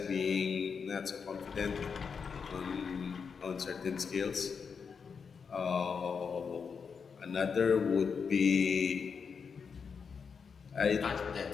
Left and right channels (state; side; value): quieter; right; 5.9 dB